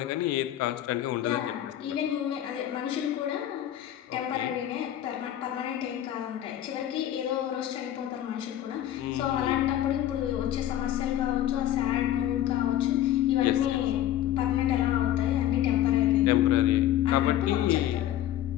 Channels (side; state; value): right; quieter; 12.1 dB